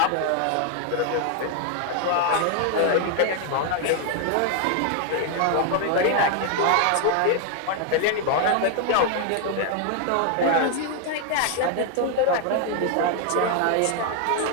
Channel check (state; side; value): different; both; correlation 0.00